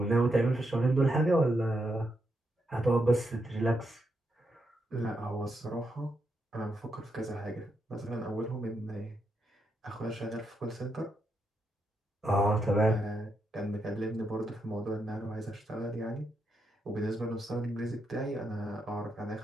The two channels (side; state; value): both; normal; correlation 0.82